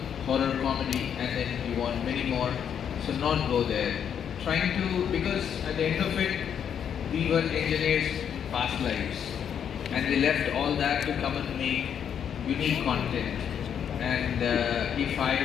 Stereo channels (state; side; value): quieter; right; 8.4 dB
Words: horror comedy and then you want many more. So not go there. Trying to, because at the end of it, we were engineers in past lives. And we left all that to come and make unique content. And if